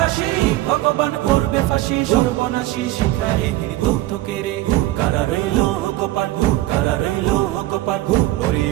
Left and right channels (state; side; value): quieter; left; 16.7 dB